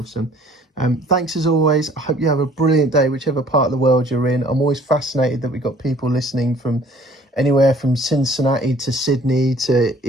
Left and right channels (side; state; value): both; normal; correlation 0.55